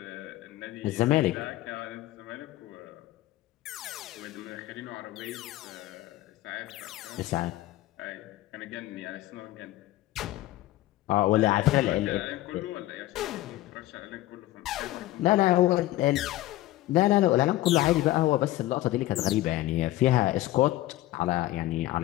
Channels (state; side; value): quieter; right; 16.1 dB